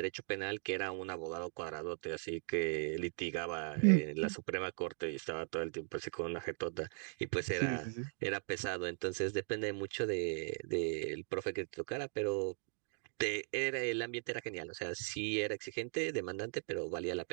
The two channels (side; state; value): left; silent; 52 dB below the other